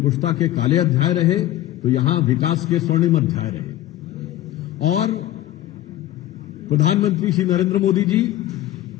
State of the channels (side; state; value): right; quieter; 14.0 dB